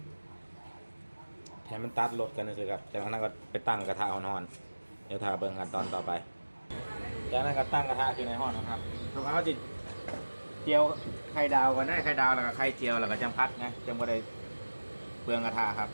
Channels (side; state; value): both; inverted; correlation -1.00